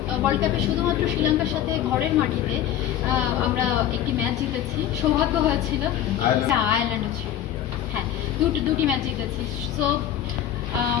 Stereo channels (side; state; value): right; quieter; 11.0 dB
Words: ওয়ার্ল্ড কাপে শুধুমাত্র শ্রীলঙ্কার সাথে ঘরের মাটিতে আমরা একটি ম্যাচ জিতেছি, সৌভাগ্য হয়েছিল। আয়ারল্যান্ডও ছিল, হ্যাঁ, দুটি ম্যাচ জিতেছি। সো